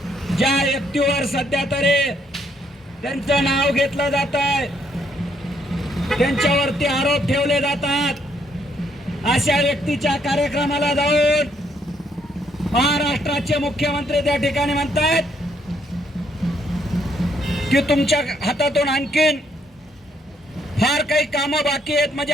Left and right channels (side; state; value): both; normal; correlation 0.71